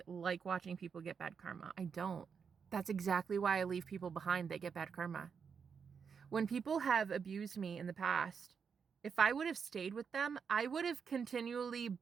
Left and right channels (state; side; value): quieter; left; 6.3 dB